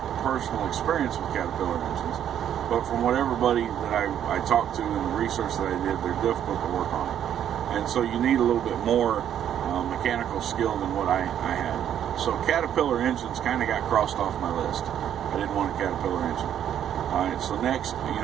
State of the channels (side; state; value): left; quieter; 10.0 dB